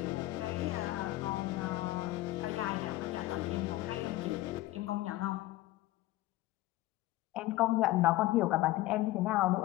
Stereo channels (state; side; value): quieter; right; 17.1 dB